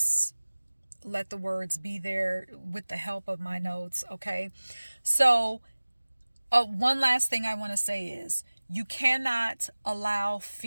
let the words be there with the help of my notes, okay? So, one last thing I want to say is you cannot allow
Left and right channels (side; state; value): both; inverted; correlation -1.00